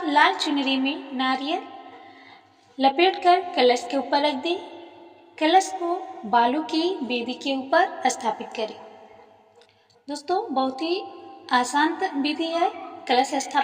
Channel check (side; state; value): both; identical; correlation 1.00